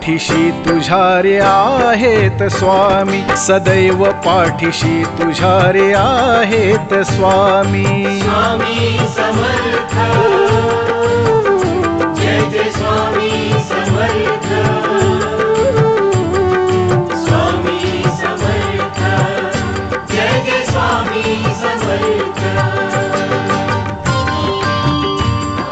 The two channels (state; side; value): identical; both; correlation 1.00